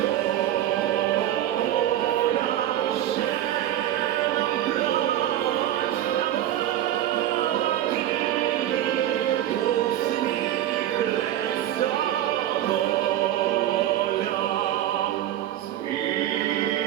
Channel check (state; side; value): quieter; left; 12.4 dB